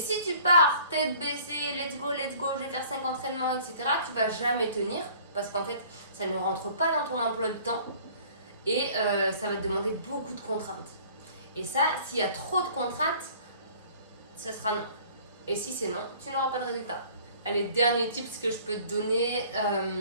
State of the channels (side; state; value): both; inverted; correlation -0.52